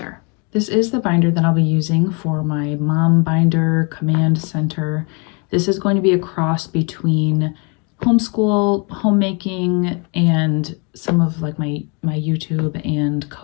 This is the binder that I'll be using for my mom binder command center. This is going to be a cross between homeschool, homemaking, and some of like my YouTube and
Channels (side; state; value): right; quieter; 33.1 dB